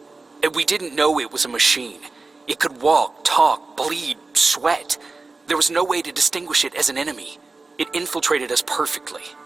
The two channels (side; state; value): left; quieter; 3.7 dB